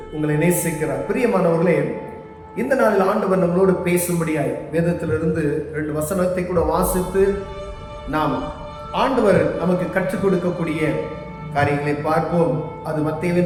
உங்களை நேசிக்கிறார். பிரியமானவர்களே, இந்த நாளில் ஆண்டவர் நம்மளோடு பேசும்படியாய் வேதத்திலிருந்து 2 வசனத்தை கூட வாசித்து நாம் ஆண்டவர் நமக்கு கற்றுக் கொடுக்கக்கூடிய காரியங்களை பார்ப்போம். அது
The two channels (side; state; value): both; identical; correlation 1.00